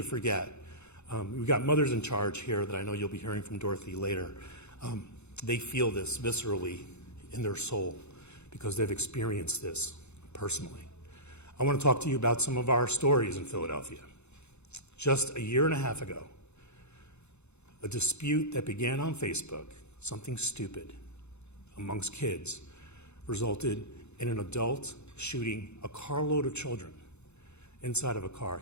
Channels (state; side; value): late; right; 0.81 ms